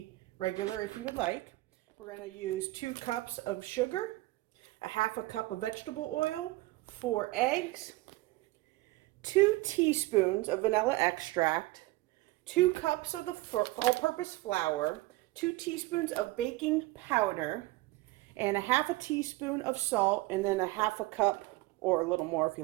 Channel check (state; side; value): quieter; left; 19.9 dB